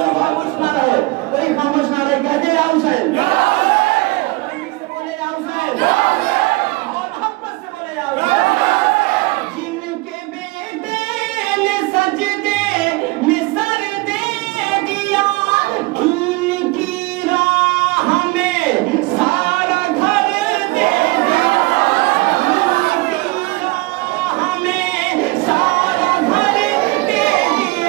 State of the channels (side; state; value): left; quieter; 23.4 dB